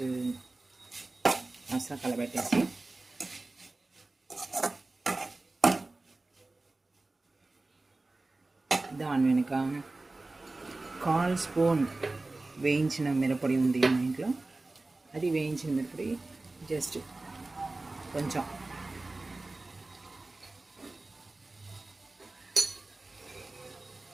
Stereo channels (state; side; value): quieter; left; 3.1 dB